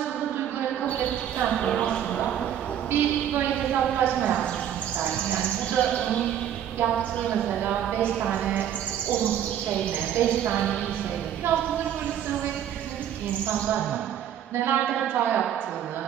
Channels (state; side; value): quieter; left; 10.1 dB